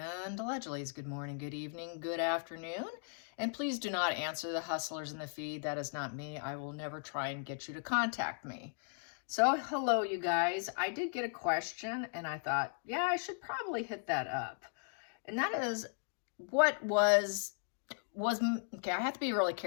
allegedly it's good morning, good evening, good afternoon. And please do not answer the hustlers in the feed. That is not me. I will never try and get you to contact me. So hello, you guys. I did get a question and I thought, yeah, I should probably hit that up. And that is, what was okay, I have to be really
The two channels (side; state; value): right; silent; digital silence